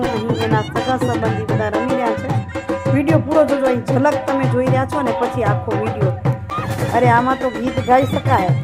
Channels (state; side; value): identical; both; correlation 1.00